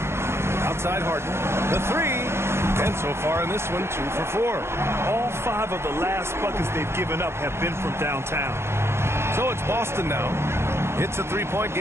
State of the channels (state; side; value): late; left; 0.12 ms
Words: Outside Harden. The 3. And so far in this one, 2 for 4. All 5 of the last buckets they've given up have been from downtown. So it's Boston now. It's a 3-point